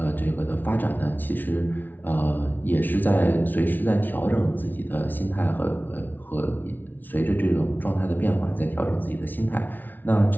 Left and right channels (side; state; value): right; late; 0.085 ms